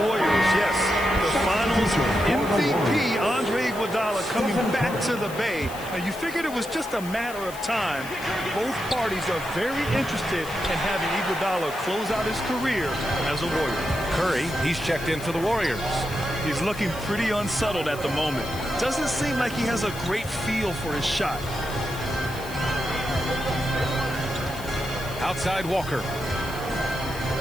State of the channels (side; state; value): left; noise; hiss, 15 dB below the sound